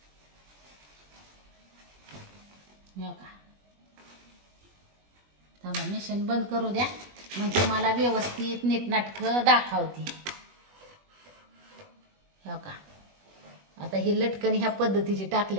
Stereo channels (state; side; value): late; left; 20 ms